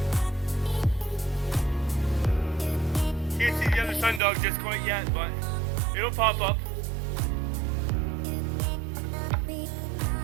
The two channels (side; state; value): left; drops out; at 4.2 s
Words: Can't see the other sun dog just quite yet, but it'll pop up.